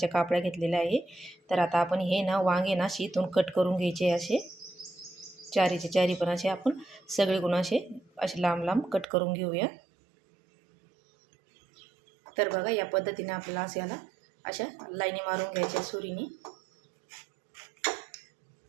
कापड्या घेतलेल्या आहे. तर आता आपण हे ना वांगे ना इथून कट करून घ्यायचे असे चारीचे चारी पण असे आपण सगळे गुण असे लांब लांब कट करून घेऊया. तर बघा या पद्धतीने आपल्याला असे याला अशा लाईनी मारून घ्यायच्या सुरीने.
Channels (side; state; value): left; drops out; at 9.1 s